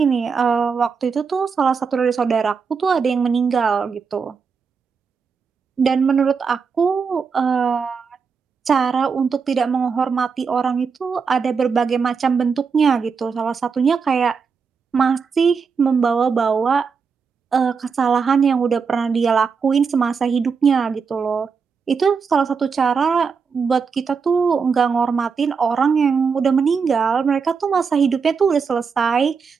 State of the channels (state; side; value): quieter; left; 5.6 dB